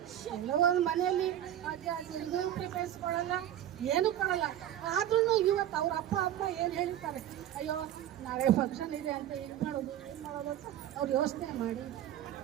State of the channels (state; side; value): quieter; left; 11.5 dB